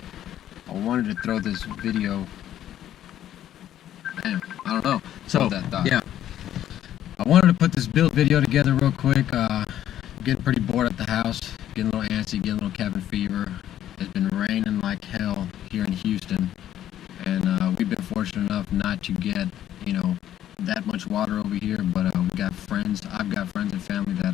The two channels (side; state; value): right; quieter; 11.6 dB